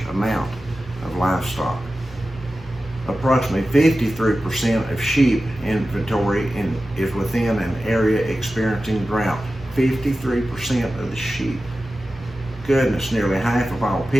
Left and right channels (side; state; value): both; normal; correlation 0.94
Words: amount of livestock. Approximately 53% of sheep inventory is within an area experiencing drought. 53% of the sheep. goodness, nearly half of all